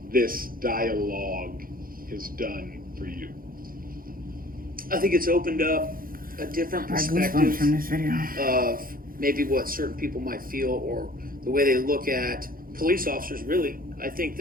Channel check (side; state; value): left; late; 0.42 ms